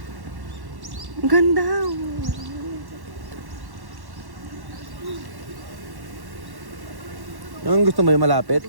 Ang ganda. Yung gusto mo yung malapit?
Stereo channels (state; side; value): late; left; 1.1 ms